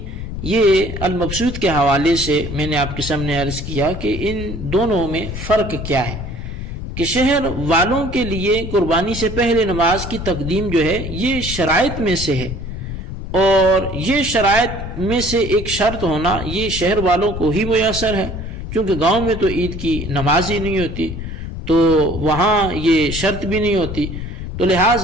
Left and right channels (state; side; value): noise; left; rumble, 7 dB below the sound